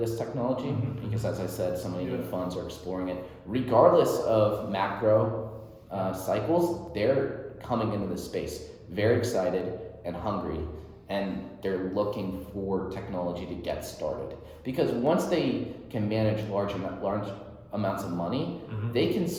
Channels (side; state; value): both; identical; correlation 1.00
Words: technology because, as I said, so many new funds are exploring it. Regardless of macro cycles, they're coming into this space very excited and hungry, and they're looking for technology to get started. Because once they can manage large amounts of money, they can